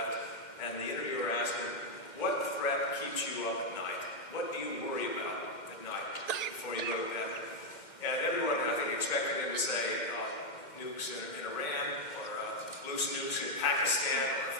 and the interviewer asked him, what threat keeps you up at night? What do you worry about at night before you go to bed? And everyone, I think, expected him to say nukes in Iran, or loose nukes in Pakistan, or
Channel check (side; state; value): right; late; 2.1 ms